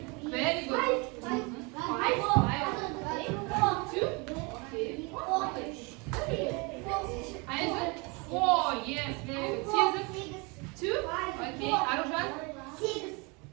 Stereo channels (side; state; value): left; quieter; 29.4 dB